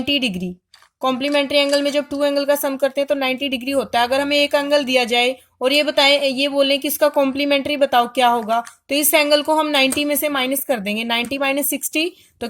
डिग्री। कॉम्प्लीमेंट्री एंगल में जब टू एंगल का सम करते हैं तो 90 डिग्री होता है। अगर हमें एक एंगल दिया जाए और ये बोलें कि इसका कॉम्प्लीमेंट्री बताओ क्या होगा, तो इस एंगल को हम 90 में से माइनस कर देंगे। 90 माइनस 60 तो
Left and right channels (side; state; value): both; identical; correlation 1.00